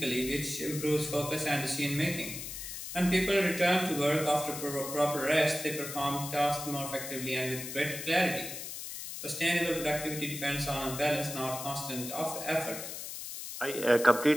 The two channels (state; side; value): noise; left; hiss, 8 dB below the sound